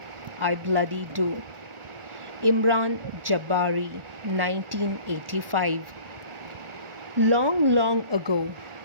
I bloody do. Imran Jabari, 1985. Long ago,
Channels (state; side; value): late; left; 1.4 ms